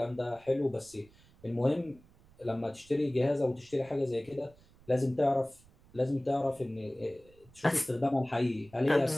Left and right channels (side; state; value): right; noise; rumble, 27 dB below the sound